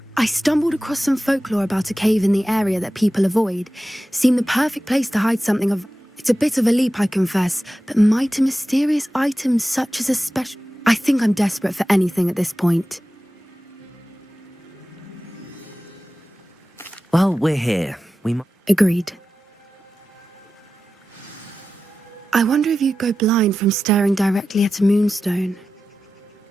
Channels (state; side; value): normal; both; correlation 0.94